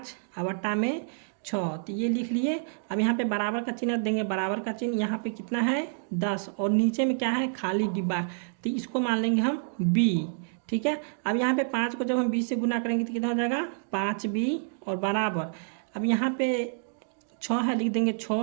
और बट्टा में 6, तो ये लिख लिए। अब यहाँ पे बराबर का चिन्ह देंगे, बराबर का चिन्ह यहाँ पे कितना है 10 और नीचे में क्या है खाली डिब्बा, तो इसको मान लेंगे हम b। ठीक है। अब यहाँ पे 5 को जब हम 20 से गुना करेंगे तो कितना हो जाएगा 5b और बराबर अब यहाँ पे 6 है, लिख देंगे 6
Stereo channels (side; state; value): left; silent; digital silence